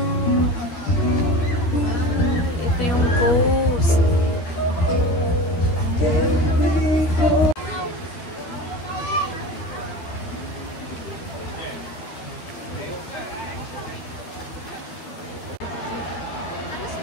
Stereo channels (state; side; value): late; right; 12 ms